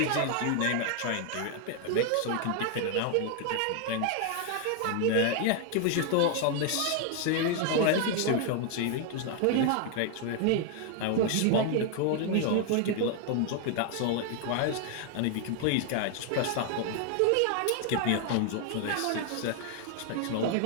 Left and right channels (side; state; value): both; different; correlation 0.00